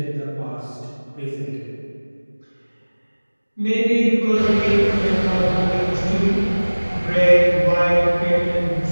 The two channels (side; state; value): both; inverted; correlation -1.00